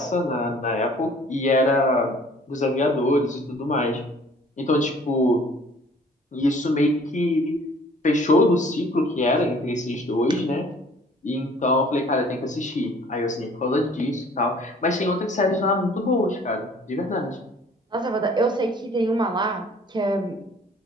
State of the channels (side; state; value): both; normal; correlation 0.54